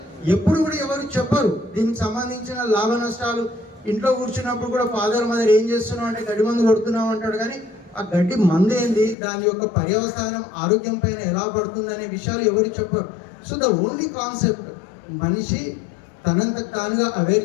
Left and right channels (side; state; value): right; drops out; at 9.2 s